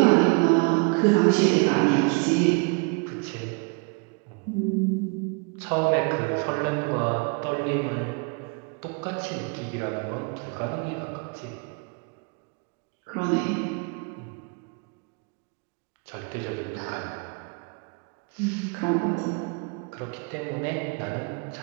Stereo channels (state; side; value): quieter; left; 33.0 dB